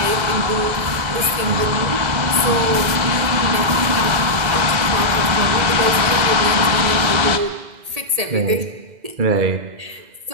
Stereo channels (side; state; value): left; late; 2.0 ms